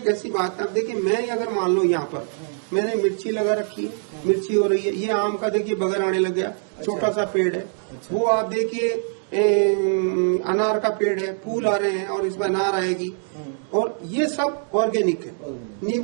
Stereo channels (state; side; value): silent; left; 63 dB below the other